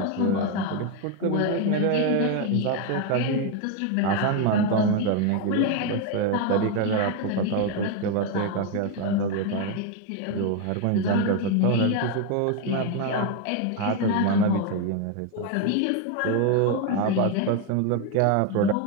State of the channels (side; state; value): both; different; correlation 0.02